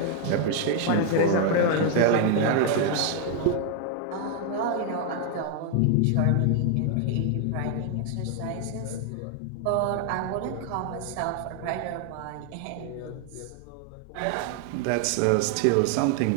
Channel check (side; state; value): both; different; correlation 0.00